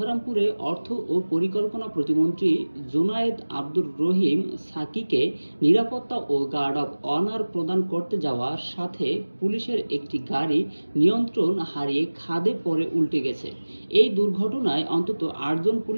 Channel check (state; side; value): inverted; both; correlation -1.00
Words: অর্থ ও পরিকল্পনা প্রতিমন্ত্রী জোনায়েদ আব্দুর রহিম সাকিকে নিরাপত্তা ও গার্ড অব অনার প্রদান করতে যাওয়ার সাথে পুলিশের একটি গাড়ি নিয়ন্ত্রণ হারিয়ে খাদে পড়ে উল্টে গেছে। এই দুর্ঘটনায় অন্তত ৮ জন